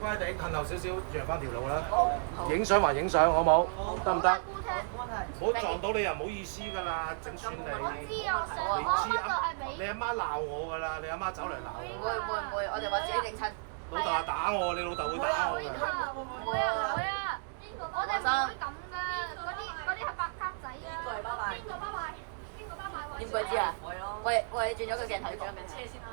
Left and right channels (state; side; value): silent; left; digital silence